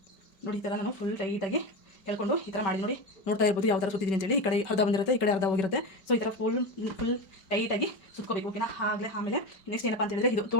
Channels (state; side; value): late; right; 5.2 ms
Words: ನೋಡಿ ಈ ಥರ ನಾನು ಫುಲ್ ಟೈಟಾಗಿ ಹೇಳ್ಕೊಂಡು ಈ ಥರ ಮಾಡಿ ನೋಡಿ, ನೋಡ್ತಾ ಇರ್ಬೋದು ಯಾವ ಥರ ಸುತ್ತಿದ್ದೀನಿ ಅಂತೇಳಿ. ಈ ಕಡೆ ಅರ್ಧ ಬಂದಿರುತ್ತೆ, ಈ ಕಡೆ ಅರ್ಧ ಹೋಗಿರುತ್ತೆ. ಸೊ ಈ ಥರ ಫುಲ್ ಟೈಟಾಗಿ ಸುತ್ಕೋಬೇಕು, ಓಕೆನಾ. ಆಮೇಲೆ ನೆಕ್ಸ್ಟ್ ಏನಪ್ಪ ಅಂತ ಹೇಳಿದ್ರೆ, ಇದು